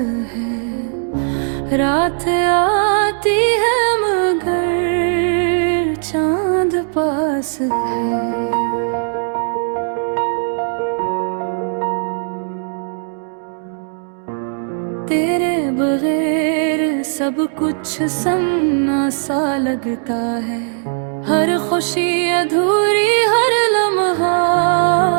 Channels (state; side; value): silent; left; digital silence